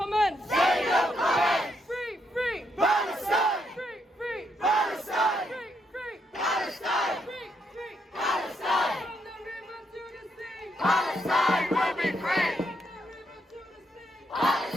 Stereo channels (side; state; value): both; normal; correlation 0.77